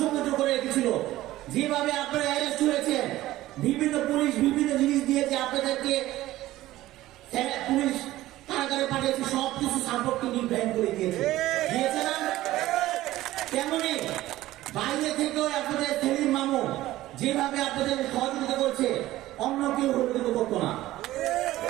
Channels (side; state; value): left; quieter; 15.9 dB